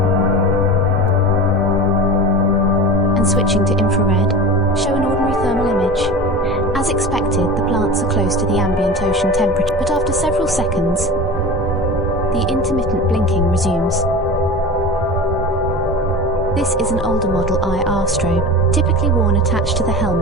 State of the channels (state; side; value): normal; both; correlation 0.32